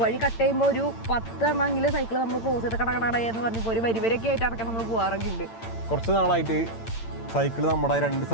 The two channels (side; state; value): right; late; 8.9 ms